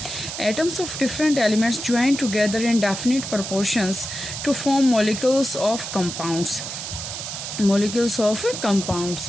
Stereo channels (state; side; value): noise; right; hiss, 7 dB below the sound